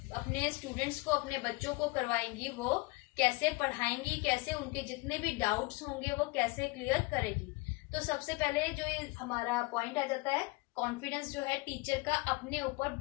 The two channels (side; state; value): right; quieter; 24.7 dB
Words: अपने स्टूडेंट्स को, अपने बच्चों को करवाएंगी वो कैसे पढ़ाएंगी, कैसे उनके जितने भी डाउट्स होंगे वो कैसे क्लियर करेगी। तो सबसे पहले जो ये हमारा पॉइंट आ जाता है, कॉन्फिडेंस जो है टीचर का अपने ऊपर